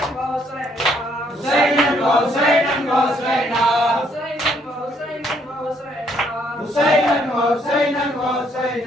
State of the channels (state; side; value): normal; both; correlation 0.69